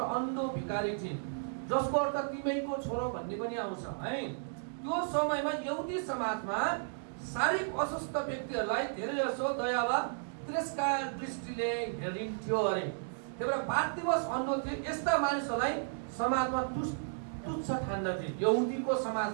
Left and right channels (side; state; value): left; silent; digital silence